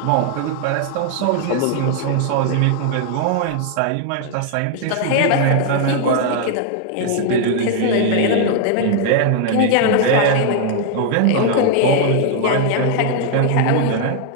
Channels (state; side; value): different; both; correlation 0.00